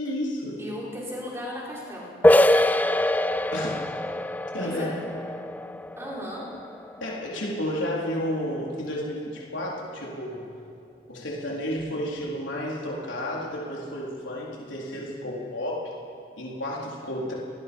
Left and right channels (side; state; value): both; normal; correlation 0.70